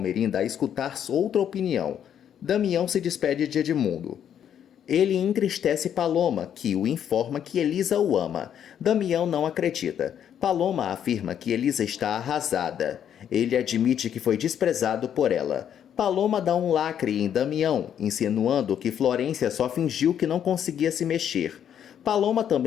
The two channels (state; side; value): quieter; right; 9.3 dB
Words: a escutar outra opinião. Damião se despede de Edmundo. Ele entristece Paloma, que o informa que Elisa o ama. Damião não acredita. Paloma afirma que Elisa está arrasada. Ele admite que foi desprezado por ela. Paloma dá um lacre em Damião, insinuando que Florência só fingiu que não conseguia se mexer. Paloma